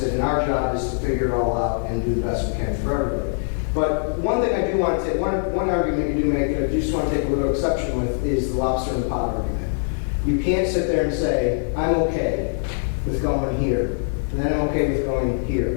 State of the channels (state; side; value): silent; right; digital silence